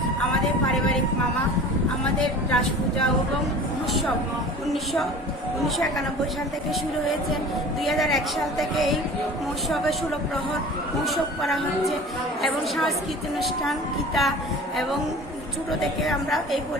আমাদের পারিবারিক মামা আমাদের রাস পূজা এবং উৎসব 1991 সাল থেকে শুরু হয়েছে। 2001 সাল থেকে এই মহোৎসবে 16 প্রহর মহোৎসব করা হচ্ছে এবং সাংস্কৃতিক অনুষ্ঠান গীতা এবং ছোট থেকে আমরা এই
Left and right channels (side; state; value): both; normal; correlation 0.40